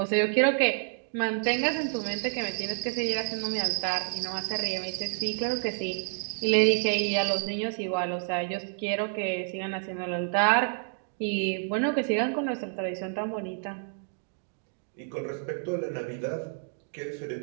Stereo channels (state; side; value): silent; left; 58 dB below the other